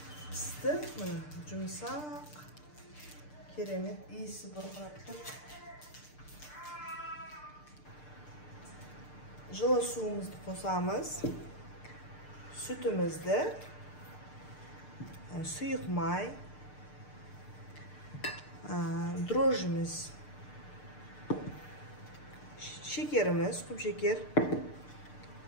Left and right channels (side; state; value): right; late; 6.7 ms